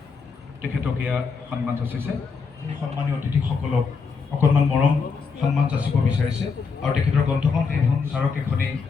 তেখেতক এয়া সন্মান যাচিছে। সন্মানীয় অতিথিসকলক অকণমান মৰম সন্মান যাচিব বিচাৰিছে আৰু তেখেতৰ গ্ৰন্থখন সেইখন স্মাৰক এখনেই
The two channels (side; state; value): right; quieter; 5.2 dB